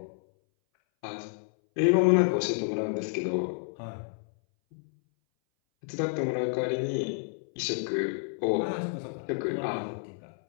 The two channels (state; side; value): silent; right; 58 dB below the other